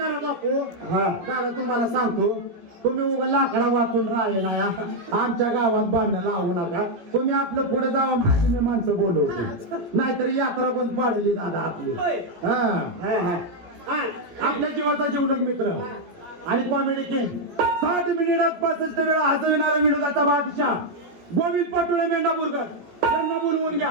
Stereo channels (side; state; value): left; late; 17 ms